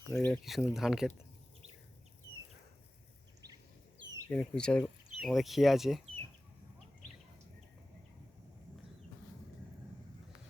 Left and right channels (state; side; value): normal; both; correlation 0.96